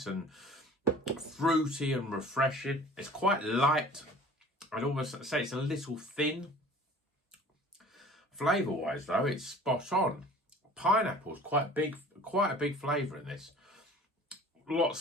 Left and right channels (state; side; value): normal; both; correlation 0.46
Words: and fruity and refreshing. It's quite light. I'd almost say it's a little thin. Flavour-wise, though, it's spot on. Pineapple's quite a big flavour in this.